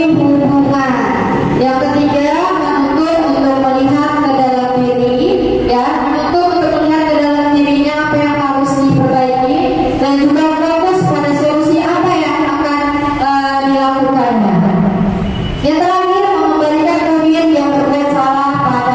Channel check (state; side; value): identical; both; correlation 1.00